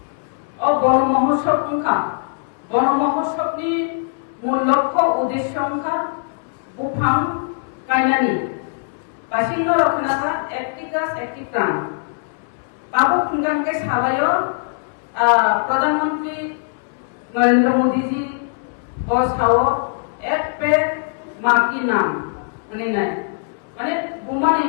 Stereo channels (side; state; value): right; silent; 65 dB below the other